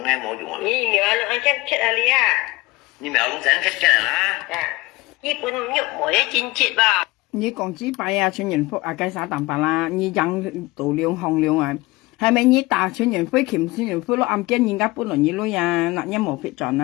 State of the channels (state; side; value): quieter; right; 21.4 dB